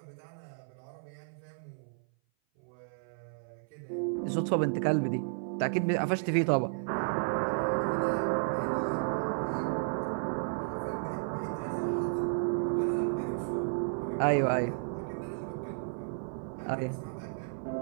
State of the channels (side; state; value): left; silent; 56 dB below the other